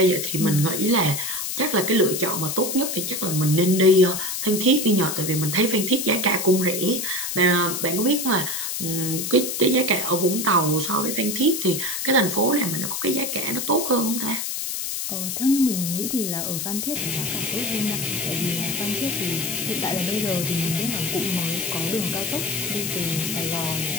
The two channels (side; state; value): left; noise; hiss, 3 dB below the sound